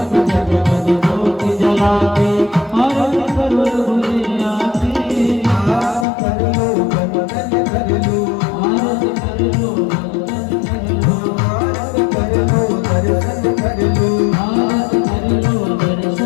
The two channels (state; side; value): drops out; right; at 6.1 s